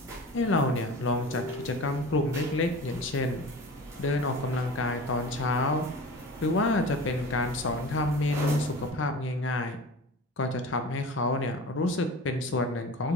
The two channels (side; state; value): both; normal; correlation 0.36